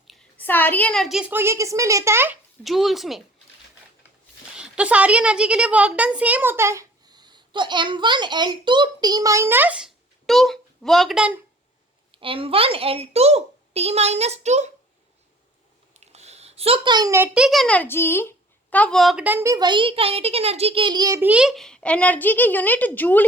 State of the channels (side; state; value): both; normal; correlation 0.51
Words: सारी एनर्जीज को ये किस में लेता है? जूल्स में। तो सारी एनर्जी के लिए वर्क डन सेम होता है। तो m1l2t-2 work done, m1l2t-2। So kinetic energy का वर्क डन भी वही, काइनेटिक एनर्जी के लिए भी एनर्जी की यूनिट जूल